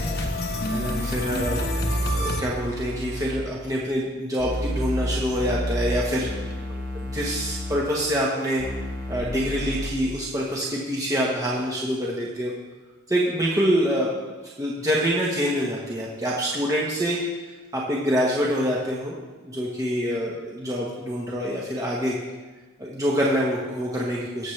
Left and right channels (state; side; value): normal; both; correlation 0.61